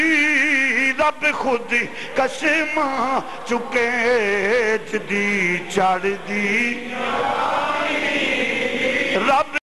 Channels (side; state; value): both; identical; correlation 1.00